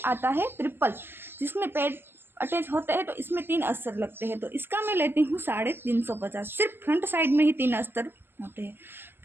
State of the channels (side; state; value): left; late; 0.10 ms